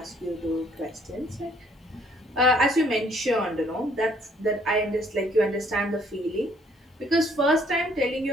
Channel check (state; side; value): normal; both; correlation 0.64